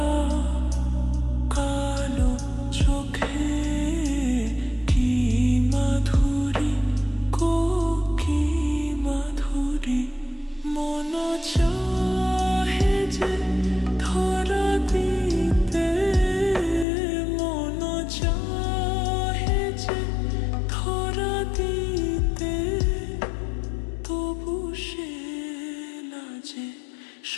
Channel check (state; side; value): drops out; right; at 16.9 s